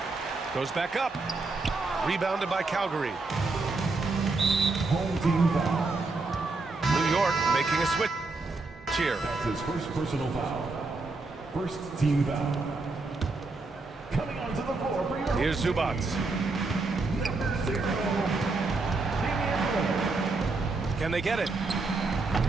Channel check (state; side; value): quieter; left; 3.6 dB